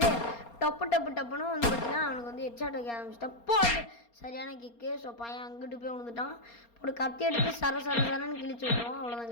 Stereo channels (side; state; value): right; late; 4.3 ms